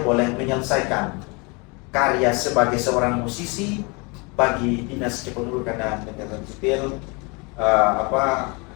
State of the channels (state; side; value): quieter; right; 29.8 dB